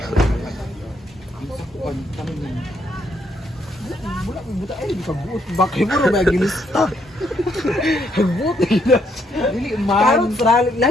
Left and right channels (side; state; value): both; normal; correlation 0.73